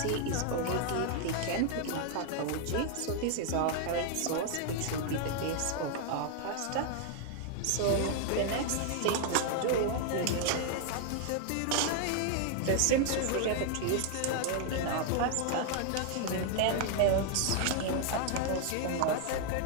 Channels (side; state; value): both; different; correlation 0.00